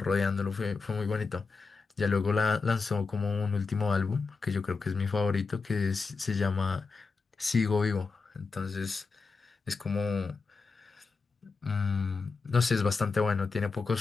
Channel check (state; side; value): quieter; right; 4.4 dB